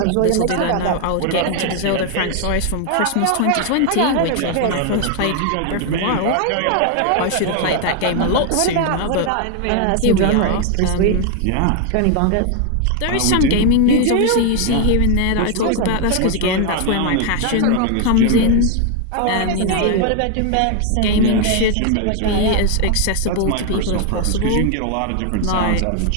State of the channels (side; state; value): both; different; correlation 0.00